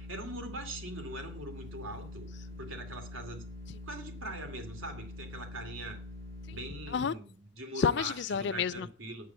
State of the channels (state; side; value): quieter; right; 3.5 dB